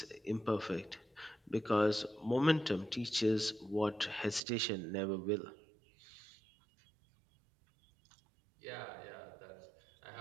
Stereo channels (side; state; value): left; drops out; at 4.4 s